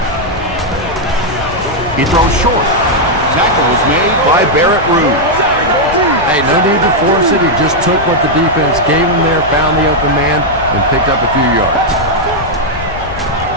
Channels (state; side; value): noise; left; rumble, 12 dB below the sound